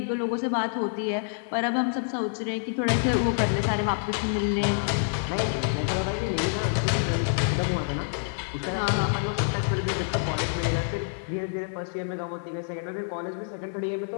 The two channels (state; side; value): silent; right; digital silence